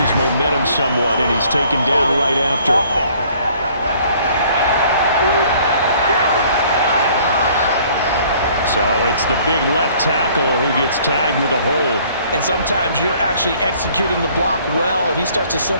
momentum somewhat, and he's taken down right after. So it's the big left tackle who gets tagged with a hold. And sometimes you're actually executing the block well, and he starts to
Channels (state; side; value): inverted; both; correlation -0.57